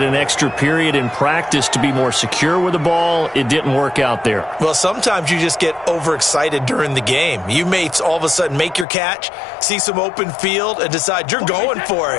an extra period in practice to be more secure with the ball. It didn't work out there. Well, sometimes you just get overexcited during the game. You may all of a sudden make your catch, see some open field, and decide you're going for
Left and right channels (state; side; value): drops out; right; at 8.8 s